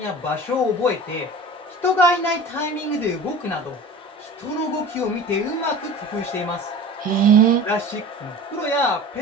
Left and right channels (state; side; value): normal; both; correlation 0.38